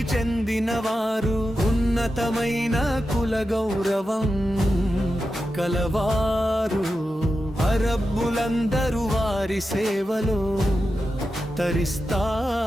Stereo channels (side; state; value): both; normal; correlation 0.90